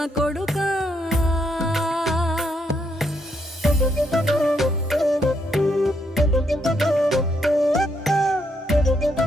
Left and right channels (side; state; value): both; normal; correlation 0.76